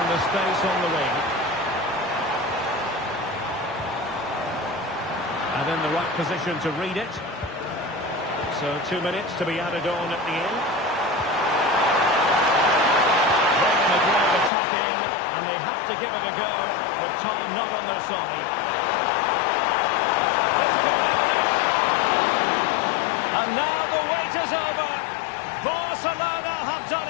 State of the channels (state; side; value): drops out; right; at 14.5 s